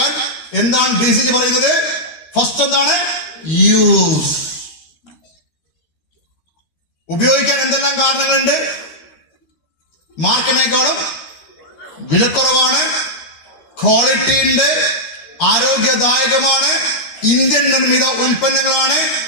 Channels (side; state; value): right; late; 13 ms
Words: എന്താണ് DCG പറയുന്നത്? ഫസ്റ്റ് എന്താണ്? യൂസ്. ഉപയോഗിക്കാൻ എന്തെല്ലാം കാരണങ്ങളുണ്ട്? മാർക്കറ്റിനേക്കാളും വിലക്കുറവാണ്, ക്വാളിറ്റി ഉണ്ട്, ആരോഗ്യദായകമാണ്, ഇന്ത്യൻ നിർമ്മിത ഉൽപ്പന്നങ്ങളാണ്,